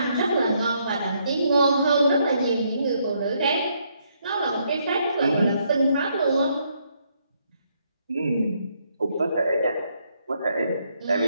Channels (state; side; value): inverted; both; correlation -0.73